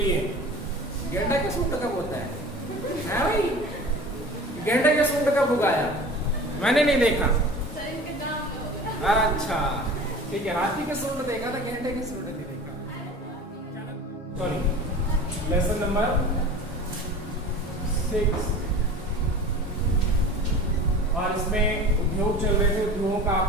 गेंडा के सूंड कब होता है भाई? गेंडे के सूंड कब उगाया? मैंने नहीं देखा। अच्छा ठीक है, हाथी के सूंड देखा था, गेंडे के सूंड नहीं देखा। Sorry, lesson number 6। और इसमें उद्योग चल रहे थे। उद्योगों का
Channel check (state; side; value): normal; both; correlation 0.38